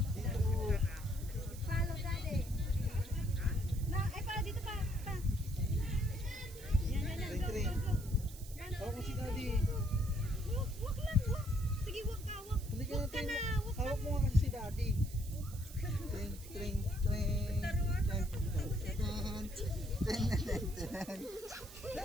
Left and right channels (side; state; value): right; noise; hiss, 17 dB below the sound